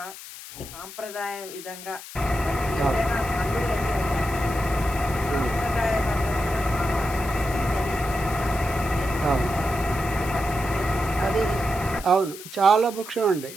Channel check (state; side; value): noise; left; hiss, 14 dB below the sound